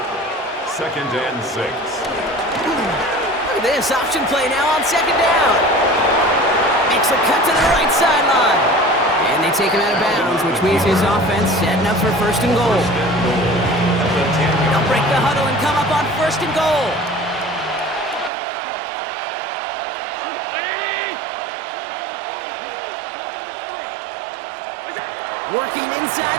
Second and 6. Look at this option play now on second down. Makes a cut to the right sideline. And they take him out of bounds, which means his offense setting up for first and goal. They'll break the huddle and come up on first and goal. Working inside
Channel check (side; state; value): left; drops out; at 18.3 s